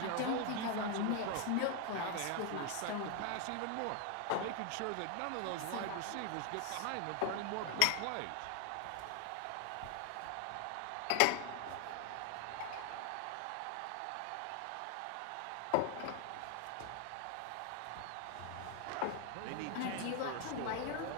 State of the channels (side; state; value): both; different; correlation 0.00